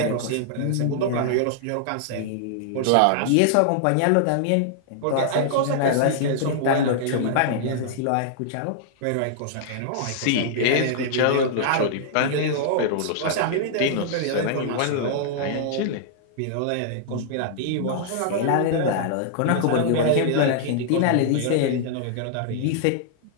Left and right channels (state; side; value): different; both; correlation -0.01